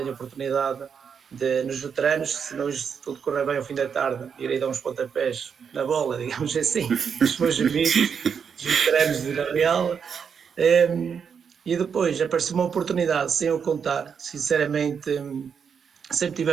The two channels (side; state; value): left; quieter; 6.8 dB